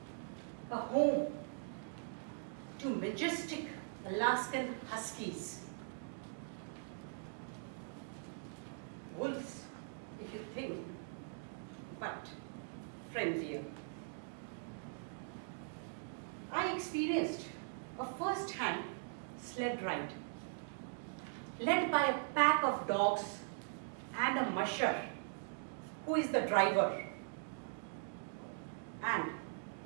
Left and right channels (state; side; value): silent; left; digital silence